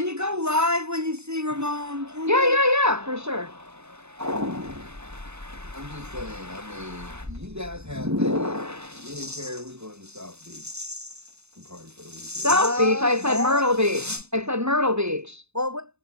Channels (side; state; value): left; late; 0.81 ms